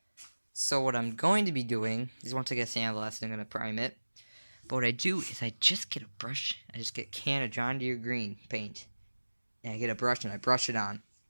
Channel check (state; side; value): inverted; both; correlation -1.00